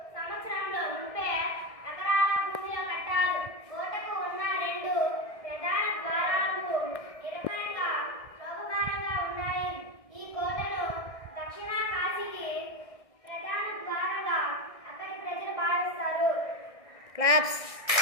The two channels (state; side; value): late; right; 1.6 ms